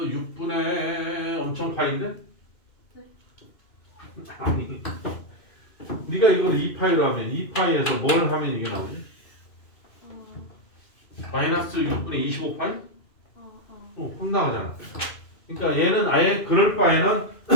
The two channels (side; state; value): right; late; 2.5 ms